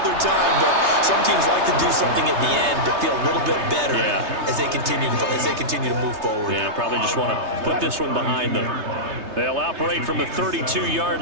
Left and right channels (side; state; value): left; late; 3.3 ms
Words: time. But some teams like to do something at the end to feel a little bit better as they continue to move forward. Yeah, probably just want to put this one behind them. They'll operate from the 32-yard